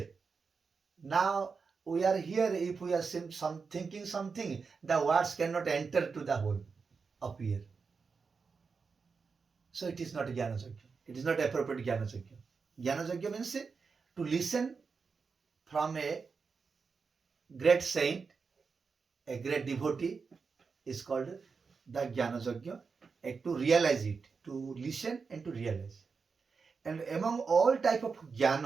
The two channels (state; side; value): quieter; left; 5.1 dB